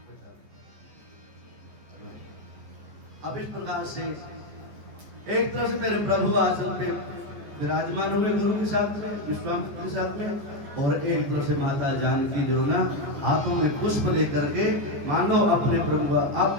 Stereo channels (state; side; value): late; left; 14 ms